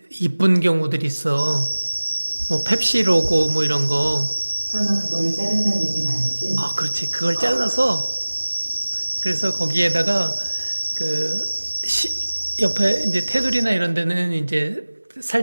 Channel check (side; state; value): both; inverted; correlation -1.00